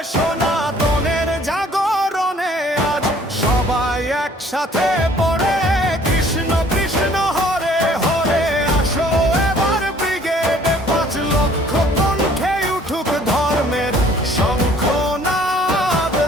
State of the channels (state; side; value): normal; both; correlation 0.57